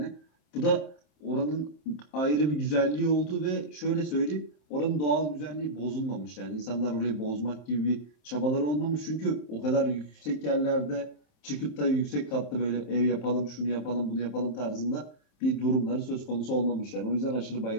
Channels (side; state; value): right; late; 27 ms